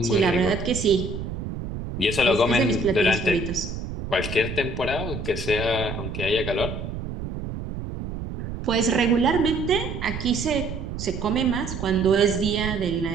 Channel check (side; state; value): right; noise; rumble, 7 dB below the sound